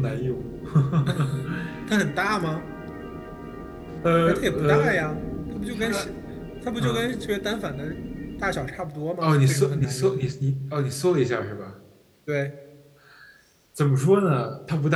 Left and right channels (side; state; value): both; identical; correlation 1.00